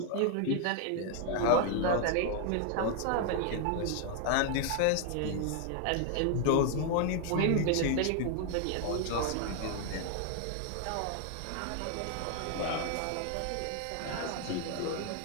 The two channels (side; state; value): both; different; correlation 0.00